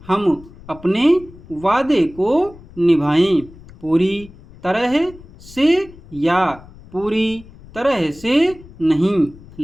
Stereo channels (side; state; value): left; noise; rumble, 20 dB below the sound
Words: हम अपने वादे को निभाएं। पूरी तरह से या पूरी तरह से नहीं,